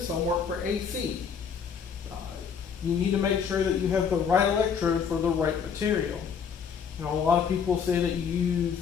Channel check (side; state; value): right; quieter; 6.8 dB